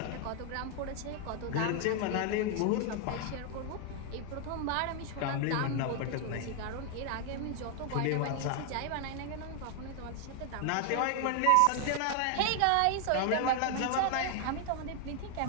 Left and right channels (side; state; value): both; different; correlation 0.00